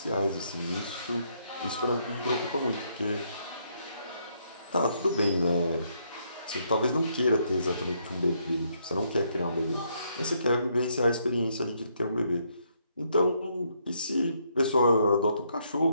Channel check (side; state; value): both; inverted; correlation -0.74